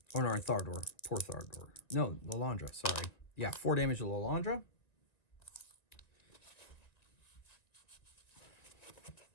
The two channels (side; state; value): right; late; 1.9 ms